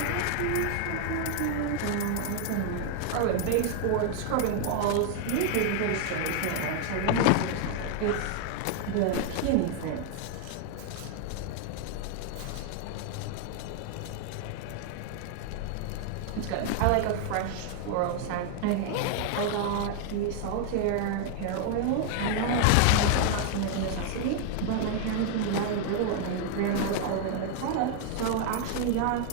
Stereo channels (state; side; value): different; both; correlation 0.00